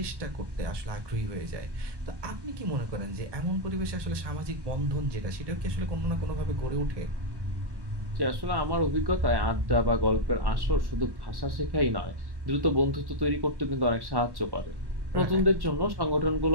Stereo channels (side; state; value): left; late; 1.2 ms